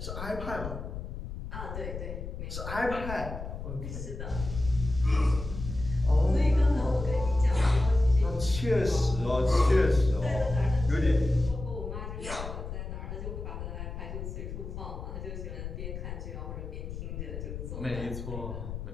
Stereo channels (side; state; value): left; noise; rumble, 8 dB below the sound